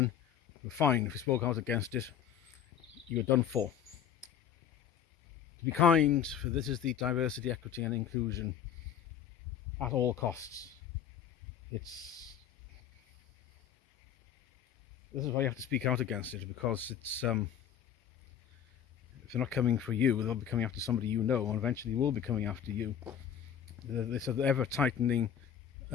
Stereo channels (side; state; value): right; quieter; 9.1 dB